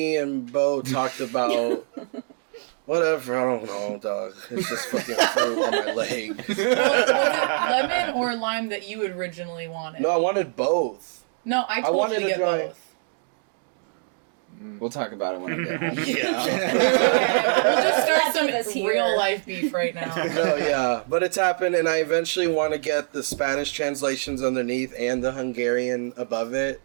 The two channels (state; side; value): silent; left; digital silence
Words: and Bo talked about whatever. I don't know, dog. It's just fucking fruit on my leg. Was it lemon or lime that you originally wanted? No, I wanted both. No, I told wanted you to to get try- both. We'll talk about it when I get home. Yeah. We'll just start Keep us some here. real life beef right now. No, yeah, but it's happened, and I eventually want to get the Spanish translations underneath and the Hungarian above it.